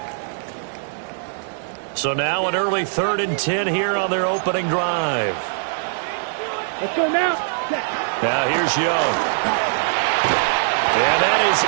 So now an early 3rd and 10 here on their opening drive. Let's go now. Now here's Young. And that is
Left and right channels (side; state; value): left; silent; digital silence